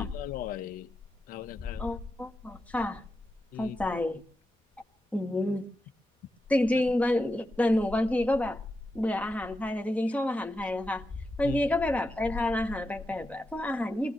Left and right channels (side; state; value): both; normal; correlation 0.88